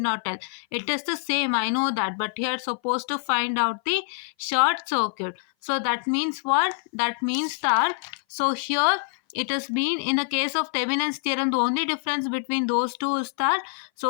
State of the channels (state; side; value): silent; right; 58 dB below the other